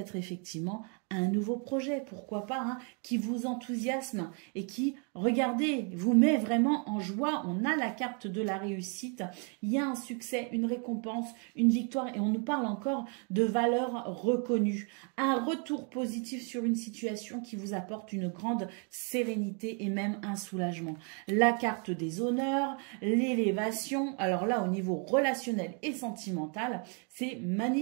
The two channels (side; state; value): left; quieter; 38.5 dB